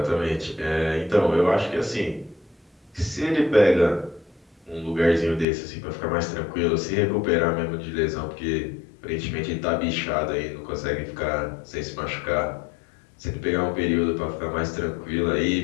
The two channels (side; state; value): right; drops out; at 5.5 s